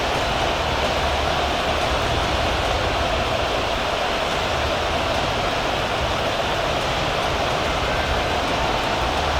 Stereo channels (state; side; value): identical; both; correlation 1.00